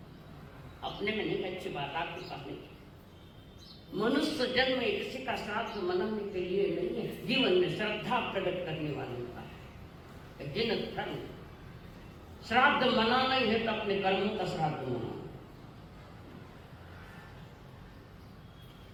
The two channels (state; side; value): identical; both; correlation 1.00